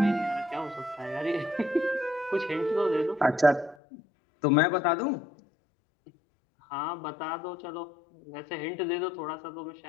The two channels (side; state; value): right; drops out; at 3.8 s